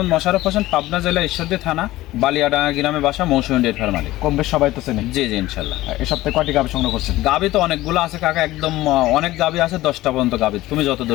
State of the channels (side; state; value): right; quieter; 16.9 dB